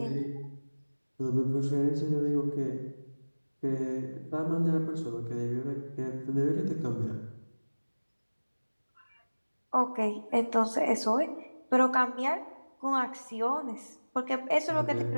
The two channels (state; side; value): inverted; both; correlation -1.00